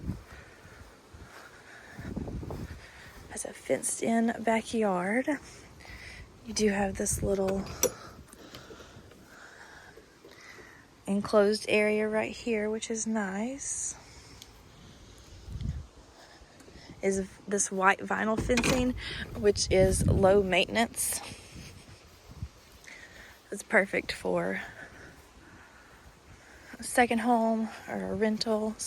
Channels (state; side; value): identical; both; correlation 1.00